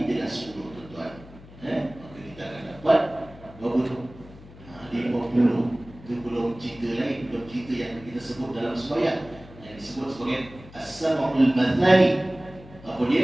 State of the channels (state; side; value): noise; left; hum, 20 dB below the sound